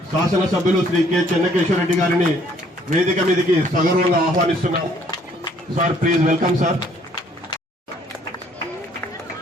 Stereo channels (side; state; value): both; normal; correlation 0.62